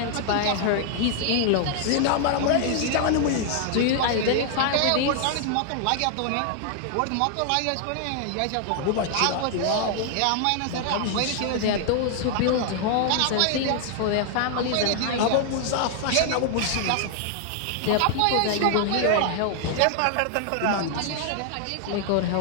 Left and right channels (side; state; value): both; different; correlation 0.00